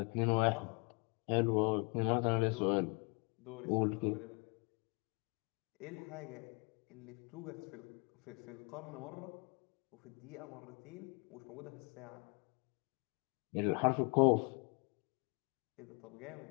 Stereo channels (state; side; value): quieter; right; 33.8 dB